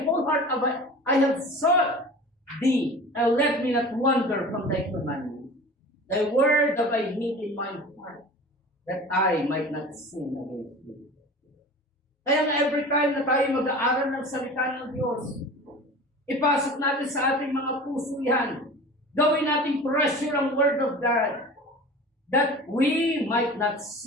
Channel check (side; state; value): both; normal; correlation 0.38